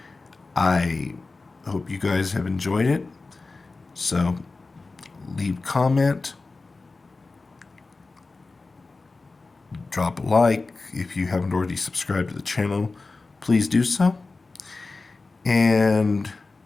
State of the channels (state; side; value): quieter; right; 3.7 dB